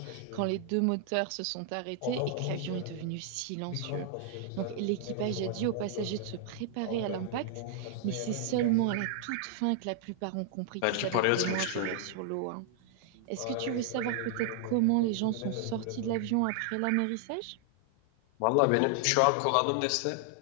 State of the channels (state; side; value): different; both; correlation 0.00